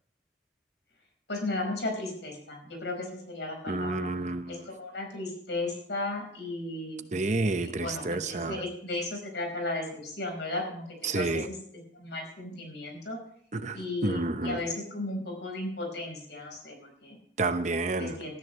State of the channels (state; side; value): normal; both; correlation 0.33